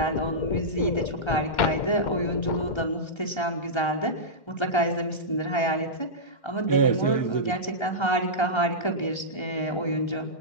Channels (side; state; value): right; late; 1.3 ms